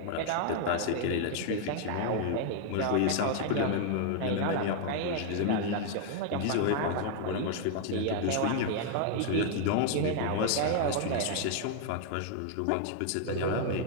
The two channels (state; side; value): different; both; correlation 0.00